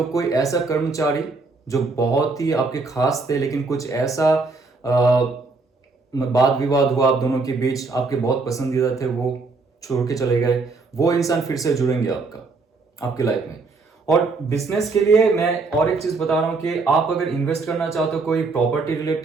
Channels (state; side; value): quieter; left; 3.9 dB